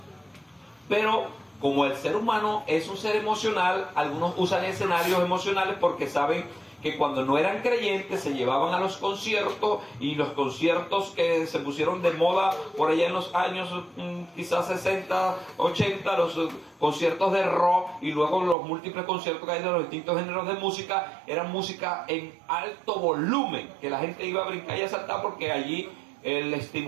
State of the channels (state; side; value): drops out; left; at 18.6 s